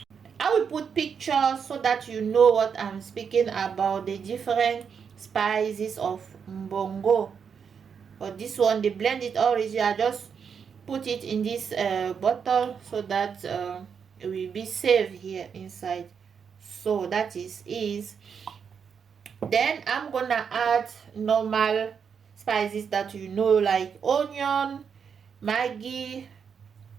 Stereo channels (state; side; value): quieter; left; 6.7 dB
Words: pictures so that you know what I'm speaking about, the different spices of mbongo. But this one they blend it already. I just put it in this bottle so that it will be safe here inside. So that is then I'm gonna add normal spices that you know, like onion, maggi,